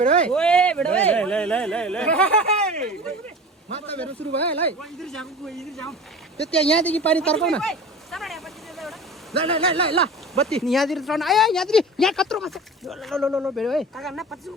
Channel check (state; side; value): normal; both; correlation 0.36